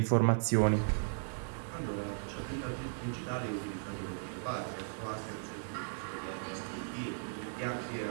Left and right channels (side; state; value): left; silent; digital silence